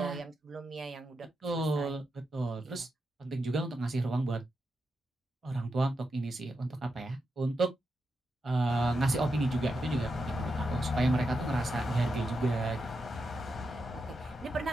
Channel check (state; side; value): normal; both; correlation 0.86